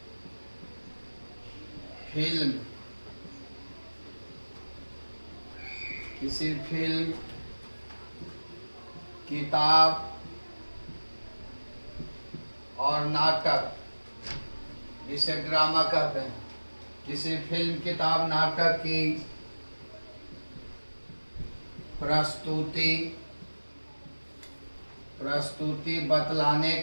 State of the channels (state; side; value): inverted; both; correlation -1.00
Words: फिल्म, किताब और नाटक, जिसे ड्रामा कहते हैं, किसी फिल्म, किताब, नाटक की प्रस्तुति बतलाने